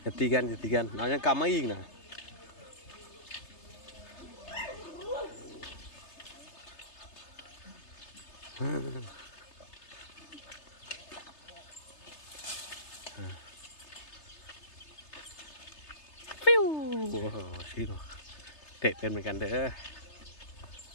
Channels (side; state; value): right; late; 3.3 ms